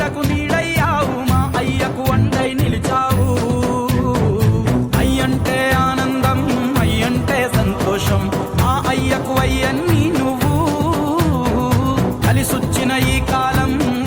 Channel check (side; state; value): both; identical; correlation 1.00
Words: నీడయ్యావు, మా అయ్యకు వండై నిలిచావు. అయ్యంటే ఆనందం, అయ్యంటే సంతోషం, మా అయ్యకు అయ్యన్ని నువ్వు. కలిసొచ్చిన ఈ కాలం